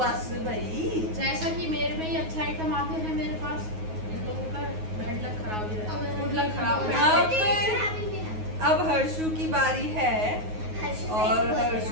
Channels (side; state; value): left; late; 9.4 ms